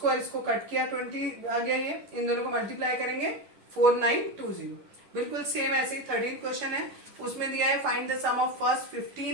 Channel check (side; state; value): left; late; 10 ms